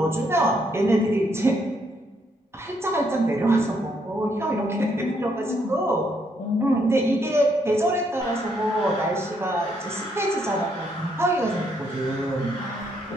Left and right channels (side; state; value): both; normal; correlation 0.73